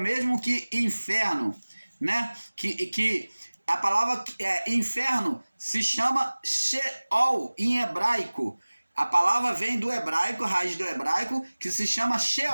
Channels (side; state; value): both; inverted; correlation -1.00